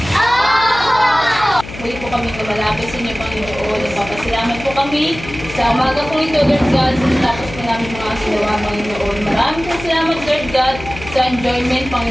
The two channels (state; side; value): noise; left; hum, 13 dB below the sound